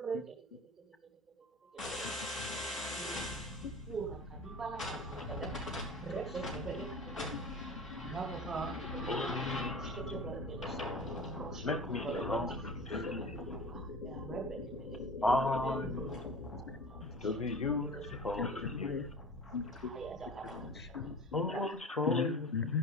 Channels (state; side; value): normal; both; correlation 0.37